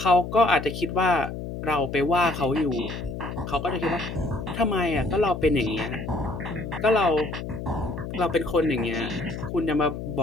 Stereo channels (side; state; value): left; noise; hum, 7 dB below the sound